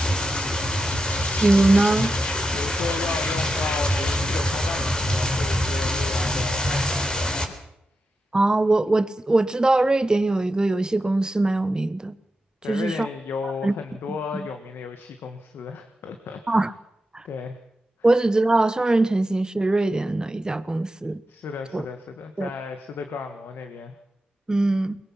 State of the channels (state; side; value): normal; both; correlation 0.89